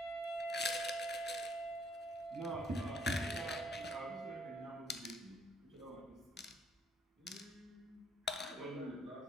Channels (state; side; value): normal; both; correlation 0.67